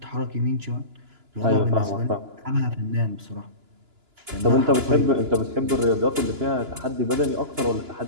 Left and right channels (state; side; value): late; left; 2.9 ms